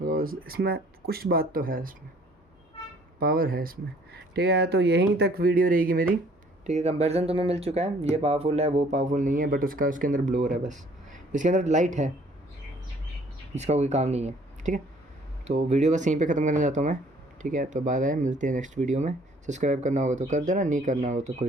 because इसमें कुछ बात तो है, इसमें पावर है इसमें, ठीक है। तो यहीं तक वीडियो रहेगी मेरी, ठीक है। कंपैरिजन तुम्हें मिल चुका है, ये पावरफुल है वो पावरफुल नहीं है, बट उसके अंदर ब्लोअर है बस, इसके अंदर लाइट है, इसका कोई काम नहीं है, ठीक है। तो वीडियो बस यहीं पे ख़त्म करना चाहता हूँ मैं, ठीक है। तो बाय बाय, मिलते हैं नेक्स्ट वीडियो में। सब्सक्राइब करना होगा तो कर देना, नहीं करना होगा तो कोई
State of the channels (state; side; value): normal; both; correlation 0.58